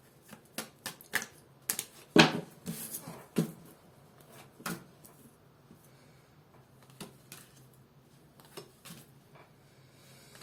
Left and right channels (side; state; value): both; identical; correlation 1.00